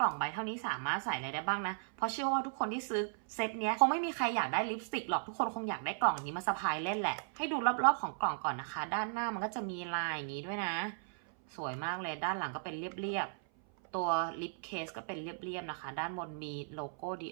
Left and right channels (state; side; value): silent; left; 54 dB below the other